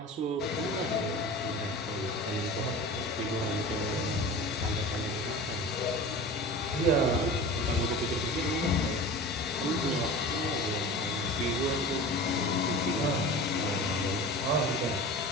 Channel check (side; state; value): both; normal; correlation 0.35